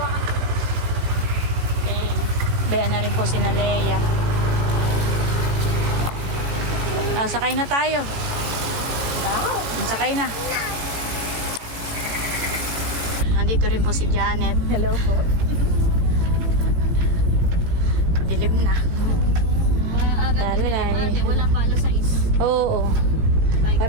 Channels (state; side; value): late; left; 18 ms